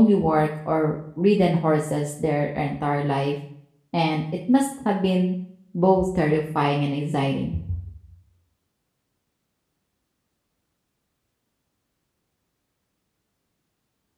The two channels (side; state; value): both; identical; correlation 1.00